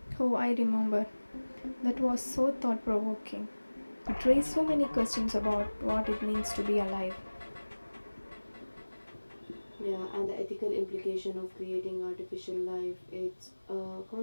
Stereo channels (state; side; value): inverted; both; correlation -1.00